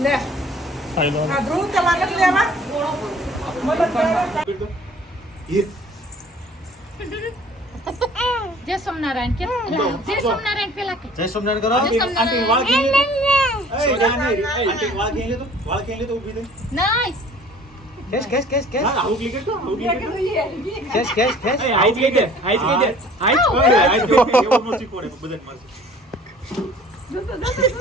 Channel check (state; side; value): normal; both; correlation 0.51